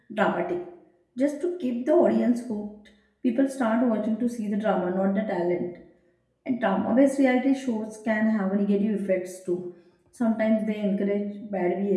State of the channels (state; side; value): identical; both; correlation 1.00